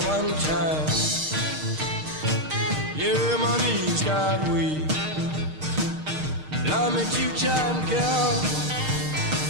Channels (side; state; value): left; late; 6.5 ms